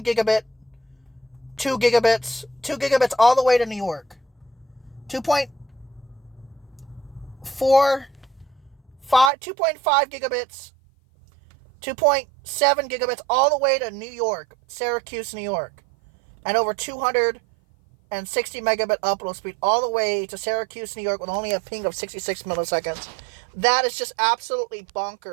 gigabit, 2 gigabits, 2 gigabits all the way to New York. 2.5 gigabits, 2.7 gigabits all the way to New York, Syracuse, New York, and over 260 megabit upload speed all the way to Syracuse, New York, with only a ping of 66 milliseconds. That is just absolutely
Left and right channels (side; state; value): left; drops out; at 9.3 s